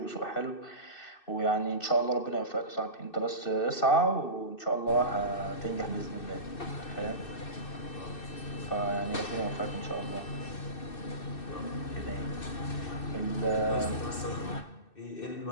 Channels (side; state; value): right; late; 2.6 ms